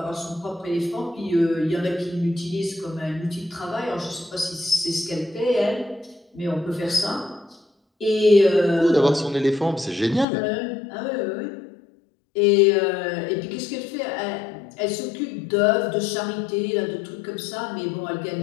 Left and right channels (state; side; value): drops out; right; at 10.2 s